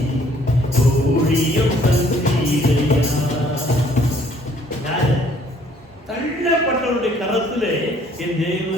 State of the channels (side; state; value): both; normal; correlation 0.61